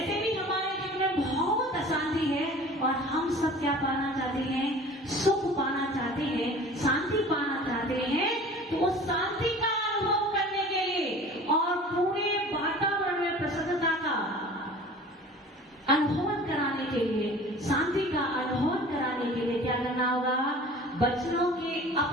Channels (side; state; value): both; normal; correlation 0.43